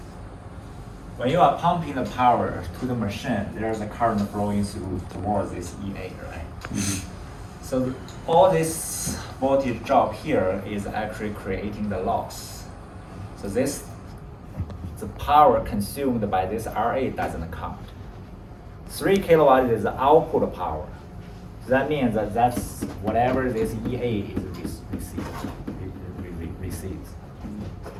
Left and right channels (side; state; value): both; identical; correlation 1.00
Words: When you are pumping the power to the machine, there's a current flowing through towards this EA, right? So all this voltage drop here is actually creating the loss. So the power consumed by this RA doesn't count. 3 kilowatt is the output power. So that means that that's whatever this EA is receives.